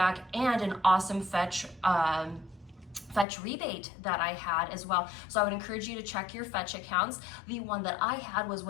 and an awesome fetch rebate that I had as well. So I would encourage you to check your fetch accounts. The one that I had was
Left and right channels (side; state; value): right; drops out; at 3.2 s